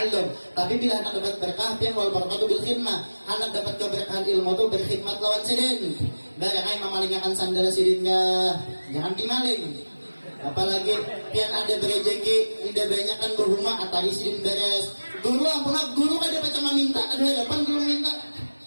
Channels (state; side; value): inverted; both; correlation -1.00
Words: tapi bila hendak dapat berkah pian wal barakatuh bil khidmah hendak dapat keberkahan ilmu itu berkhidmat lawan sidin barangnya memalingakan sandal sidin jangan dimaling apalagi pian ada berejeki tidak banyak kan berhumah atari sidin beres guru ampun guru kan dapat cuma minta ada hadapan guru minta